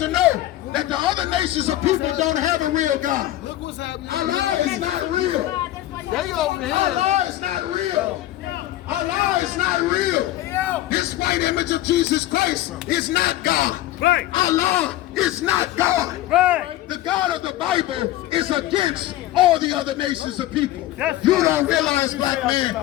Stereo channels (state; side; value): quieter; right; 14.8 dB